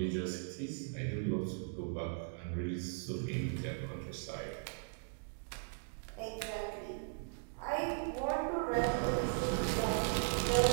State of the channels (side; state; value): left; silent; digital silence